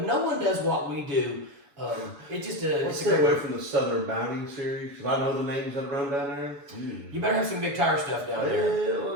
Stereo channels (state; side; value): late; left; 7.1 ms